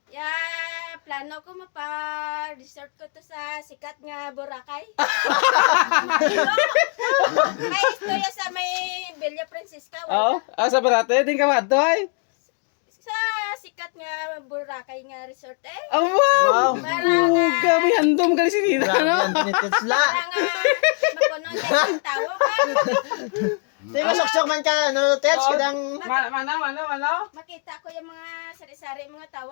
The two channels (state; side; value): quieter; right; 39.9 dB